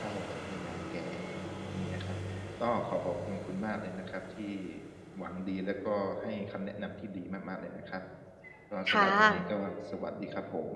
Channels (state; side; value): identical; both; correlation 1.00